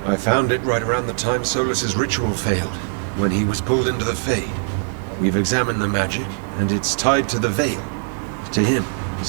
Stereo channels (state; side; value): silent; left; 60 dB below the other